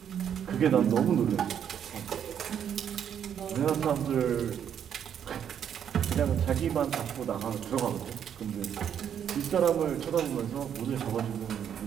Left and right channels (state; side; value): quieter; left; 8.8 dB